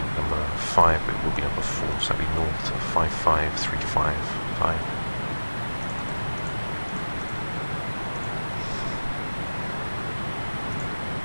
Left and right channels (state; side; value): inverted; both; correlation -1.00